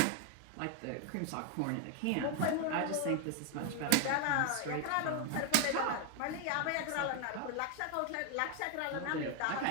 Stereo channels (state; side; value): different; both; correlation 0.01